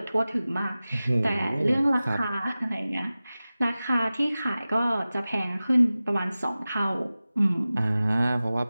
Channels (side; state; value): both; inverted; correlation -0.96